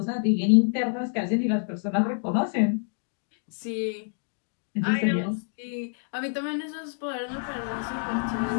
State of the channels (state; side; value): silent; right; 60 dB below the other